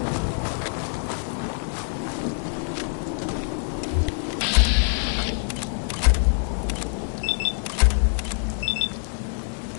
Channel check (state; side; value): silent; right; digital silence